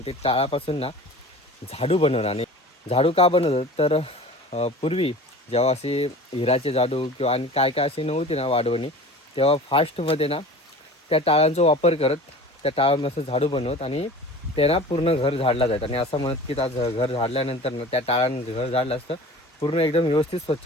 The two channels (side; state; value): both; normal; correlation 0.40